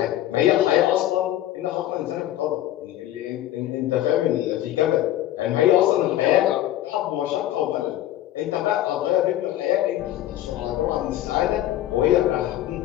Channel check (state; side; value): quieter; right; 13.5 dB